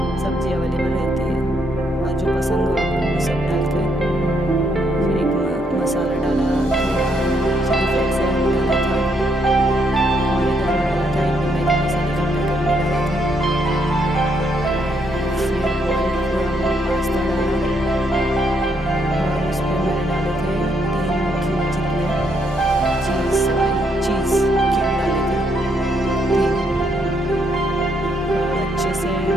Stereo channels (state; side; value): normal; both; correlation 0.74